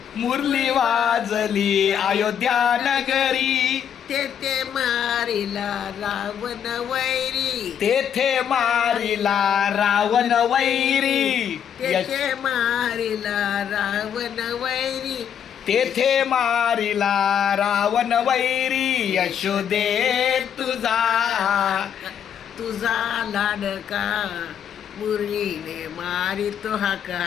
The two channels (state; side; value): quieter; right; 8.7 dB